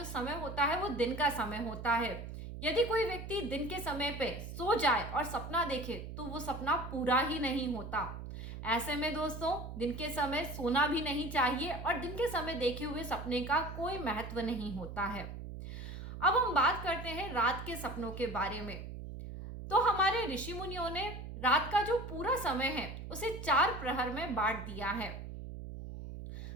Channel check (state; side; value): noise; right; hum, 9 dB below the sound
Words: समय होता है वो दिन का समय होता है। यदि कोई व्यक्ति दिन के समय पे सो जाए और सपना देखे तो वो सपना पूरा ही नहीं होता। ऐसे में दोस्तों, दिन के समय सोना भी नहीं चाहिए और दिन के समय देखे हुए सपने का कोई महत्व नहीं होता है। अब हम बात करते हैं रात के सपनों के बारे में। तो हमारे ऋषि मुनियों ने रात का जो पूरा समय है उसे 4 प्रहर में बांट दिया है।